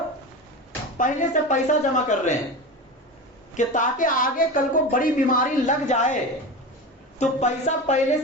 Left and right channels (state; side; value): normal; both; correlation 0.26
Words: پہلے سے پیسہ جمع کر رہے ہیں کہ تاکہ آگے کل کو بڑی بیماری لگ جائے تو پیسہ پہلے